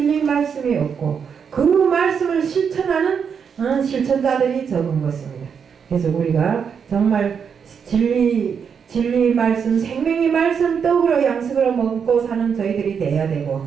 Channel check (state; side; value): quieter; left; 6.8 dB